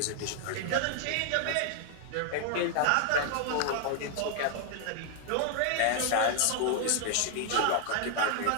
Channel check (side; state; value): both; different; correlation 0.00